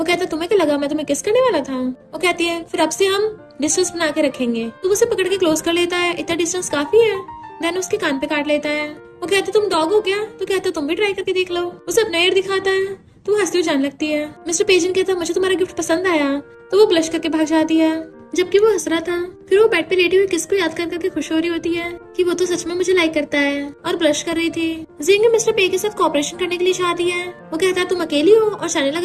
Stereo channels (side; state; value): both; identical; correlation 1.00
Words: कहता है तुम्हें क्या लगा मैं तुम्हें किस करने वाला था? वो कहती है फिर अब से हम डिस्टेंस बना के रखेंगे। तो उसे पकड़ के क्लोज कर लेता है, इतना डिस्टेंस काफी है। देन उसके कान पे काट लेता है। वो कहते तुम डॉग हो क्या? तो कहता तुम भी ट्राई करके देख लो। उसे अपना एयर दिखाता है तो वो हंसती हुई जाने लगती है। मिस्टर पेजेंट कहता मुझे तुम्हारा गिफ्ट पसंद आया, तो वो ब्लश करके भाग जाती है जबकि वो हंस रहा था। फिर वो बेड पे लेटी हुई किसको याद कर करके खुश हो रही होती है कि वो तो सच में मुझे लाइक करता है, और ब्लश कर रही थी। जिंग मिस्टर पे के साथ कोऑपरेशन करने के लिए चाहती है। वो कहता है तुम अकेली हो और जाने